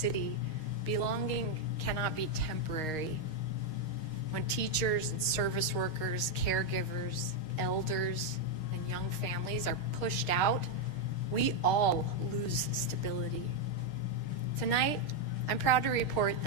belonging cannot be temporary. When teachers and service workers, caregivers, elders, and young families are pushed out, we all lose stability. Tonight, I'm proud to report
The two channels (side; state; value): right; late; 6.4 ms